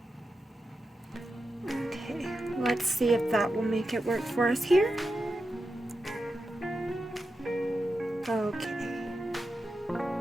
Let's see if that will make it work for us here. Okay.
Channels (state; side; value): normal; both; correlation 0.89